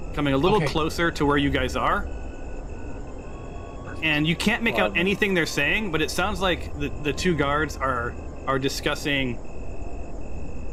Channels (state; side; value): identical; both; correlation 1.00